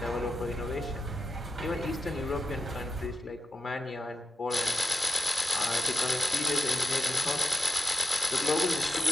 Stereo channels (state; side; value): normal; both; correlation 0.88